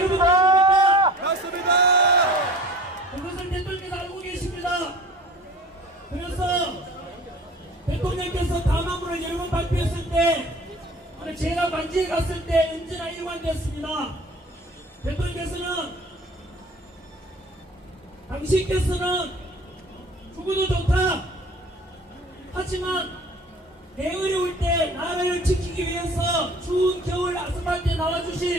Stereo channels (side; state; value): both; normal; correlation 0.45